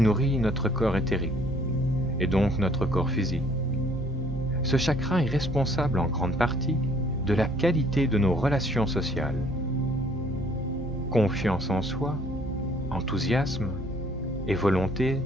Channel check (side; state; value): both; normal; correlation 0.59